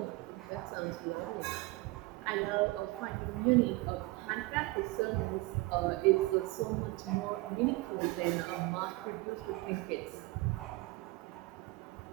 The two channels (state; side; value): quieter; left; 21.7 dB